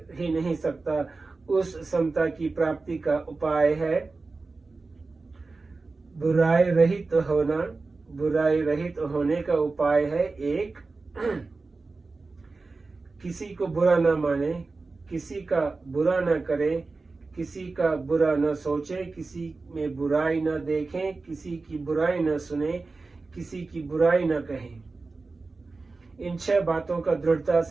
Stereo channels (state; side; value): quieter; left; 3.8 dB